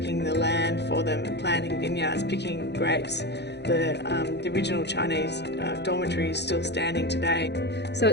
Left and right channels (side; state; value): right; late; 0.50 ms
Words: the land for them, planting vineyards, picking grapes. The original Chinese dormitory is still standing today. So